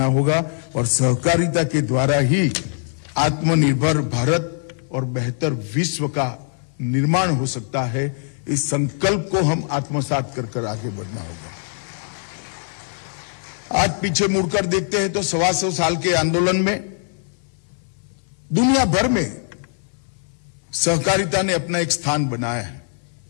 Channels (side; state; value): right; silent; 60 dB below the other